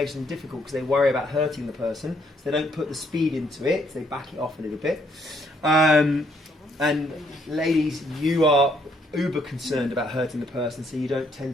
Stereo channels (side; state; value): both; normal; correlation 0.70